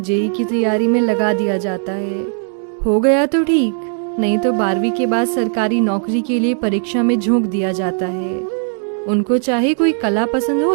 की तैयारी में लगा दिया जाता है। हो गया तो ठीक, नहीं तो 12वीं के बाद सरकारी नौकरी के लिए परीक्षा में झोंक दिया जाता है। उनको चाहे कोई कला पसंद हो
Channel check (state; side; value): silent; left; 66 dB below the other